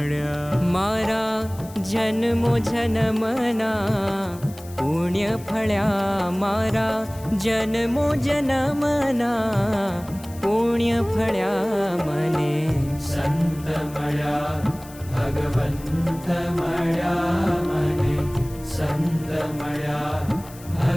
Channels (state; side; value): noise; left; hiss, 20 dB below the sound